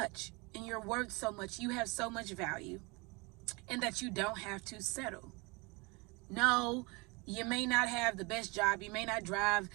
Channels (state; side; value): quieter; left; 27.5 dB